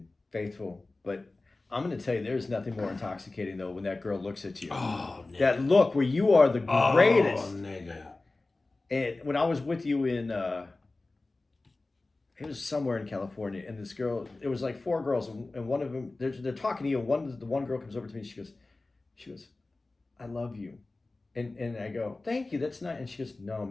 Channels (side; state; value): right; quieter; 3.2 dB